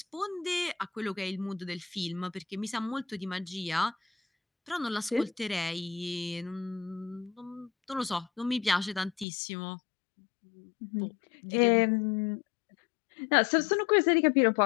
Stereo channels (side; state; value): right; drops out; at 9.2 s